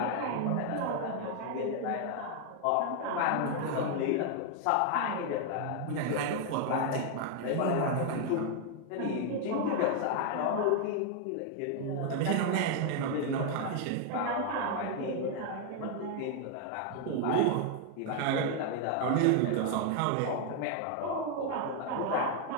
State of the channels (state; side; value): different; both; correlation 0.00